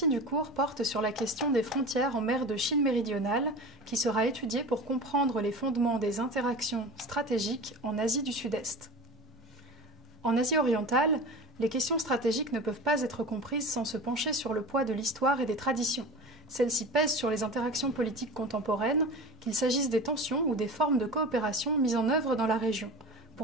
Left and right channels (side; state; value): both; normal; correlation 0.33